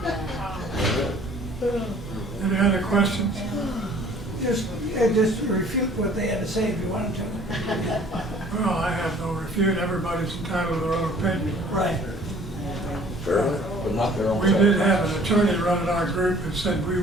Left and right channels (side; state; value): both; normal; correlation 0.54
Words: Any other questions? Just refute what they had to say if you wanted to. Well, I have no refute. Everybody's entitled to their own opinion. Right. But not their own. We did have an attorney running our group that said we